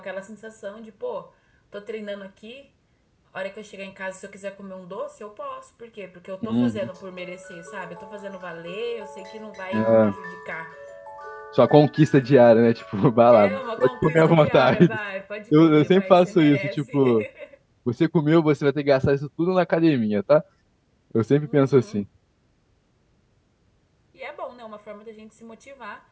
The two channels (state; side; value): identical; both; correlation 1.00